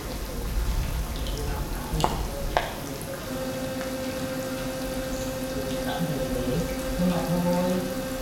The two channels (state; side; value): identical; both; correlation 1.00